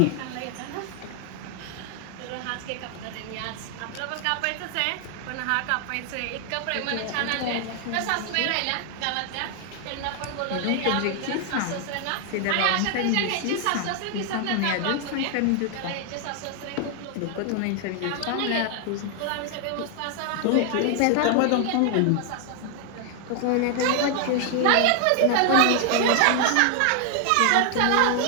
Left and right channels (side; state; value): both; different; correlation 0.00